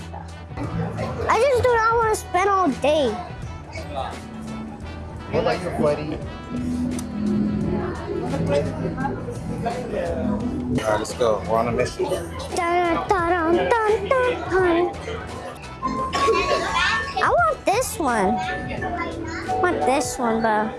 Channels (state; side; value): identical; both; correlation 1.00